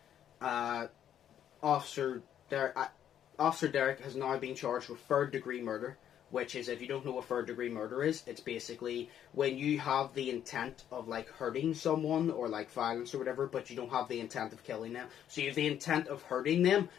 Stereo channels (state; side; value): quieter; right; 10.1 dB